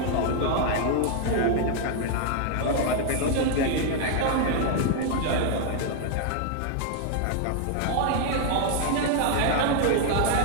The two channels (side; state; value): both; different; correlation 0.00